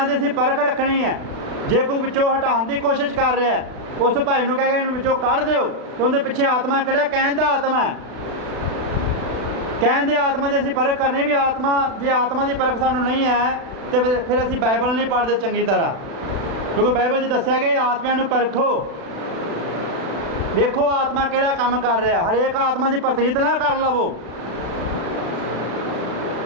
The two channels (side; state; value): left; late; 36 ms